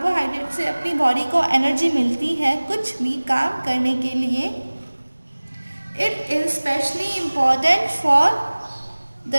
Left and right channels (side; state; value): both; inverted; correlation -1.00